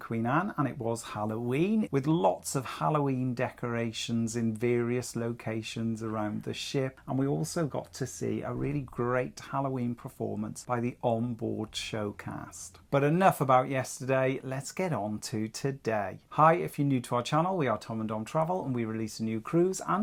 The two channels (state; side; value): identical; both; correlation 1.00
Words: Anne, and it was Halloween, with lots of Halloween decorations in various locations around the ship. And we also got to see a really great Halloween performance by the onboard showcast. But enough about yesterday, let's get on to today. Hi, if you're new to our channel, we are Tom and Dom Travel, and we release a new cruise